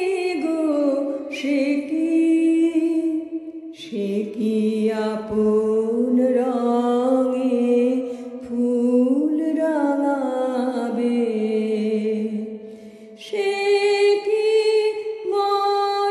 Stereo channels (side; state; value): both; identical; correlation 1.00